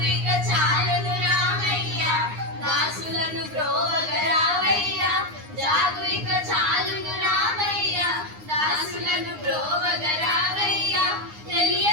ఇక చాలును రామయ్య దాసులను బ్రోవగరావయ్య జాగు ఇక చాలును రామయ్య దాసులను బ్రోవగరావయ్య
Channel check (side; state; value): left; late; 9.7 ms